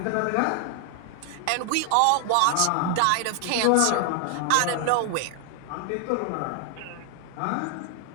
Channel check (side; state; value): both; different; correlation 0.00